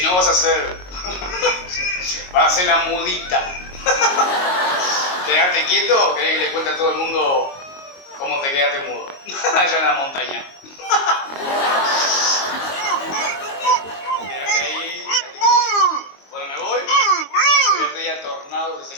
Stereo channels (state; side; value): late; right; 22 ms